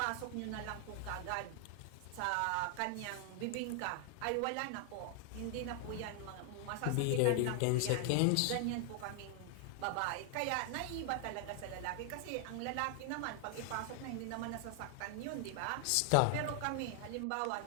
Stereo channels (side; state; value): both; different; correlation 0.00